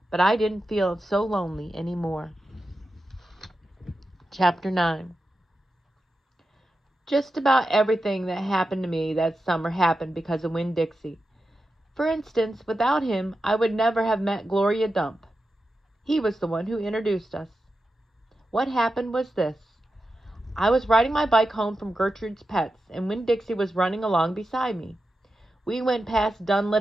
but I didn't feel so lonely anymore. Chapter 9. Just about everything that happened to me that summer happened because of Winn-Dixie. For instance, without him, I would never have met Gloria Dump. He was the one who introduced us. What happened was this. I was riding my bike home from Gertrude's Pets, and Winn-Dixie was running along beside me. We went past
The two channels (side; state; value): both; normal; correlation 0.91